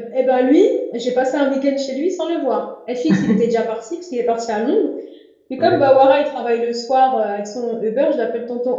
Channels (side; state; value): both; identical; correlation 1.00